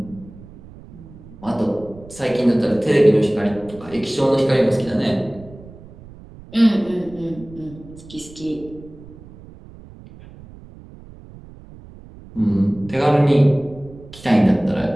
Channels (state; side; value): noise; right; rumble, 19 dB below the sound